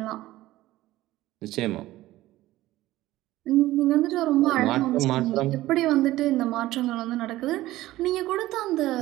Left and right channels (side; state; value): left; quieter; 16.3 dB